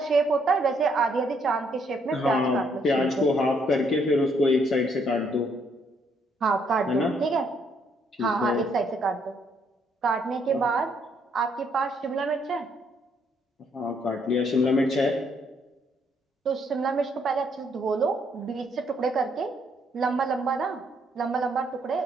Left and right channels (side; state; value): both; normal; correlation 0.70